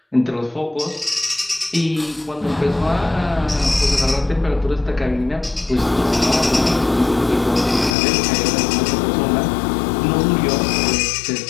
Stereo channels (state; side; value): drops out; right; at 8.0 s